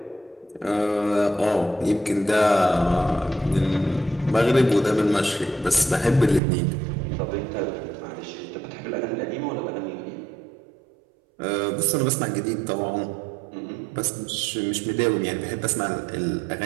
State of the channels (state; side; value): drops out; left; at 6.4 s